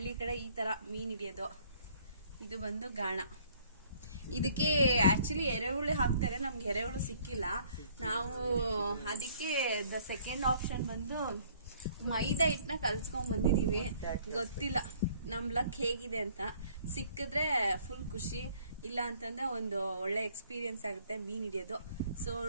ಕಡೆ ಈ ತರ ಮೀನ್ ಹಿಡಿಯೋದು. ಇದು ಬಂದು ಗಾಣ. ಇದಕ್ಕೆ ಆಕ್ಚುಲಿ ಎರೆಹುಳಿ ಹಾಕ್ತಾರೆ, ನಮ್ಗೆ ಎರೆಹುಳು ಸಿಕ್ಕಿಲ್ಲ. ನಾವು ಅದಕ್ಕೆ ದ ಸೆಕೆಂಡ್ ಆಪ್ಷನ್ ಬಂದು ಮೈದಾ ಹಿಟ್ಟನ್ನ ಕಲ್ಸ್ಕೊಂಡ್ ಬಂದಿದೀವಿ. ಗೊತ್ತಿಲ್ಲ ನಮ್ ಲಕ್ ಹೇಗಿದೆ ಅಂತ. ಸಿಕ್ಕಿದ್ರೆ ಫುಲ್ ಖುಷಿ, ಇಲ್ಲ ಅಂತಂದ್ರೆ ಒಂದು ಒಳ್ಳೆ ಎಕ್ಸ್ಪೀರಿಯನ್ಸ್ ಆಗುತ್ತೆ ಮೀನ್ ಹಿಡಿಯೋದು. ಸೊ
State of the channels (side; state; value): both; inverted; correlation -0.59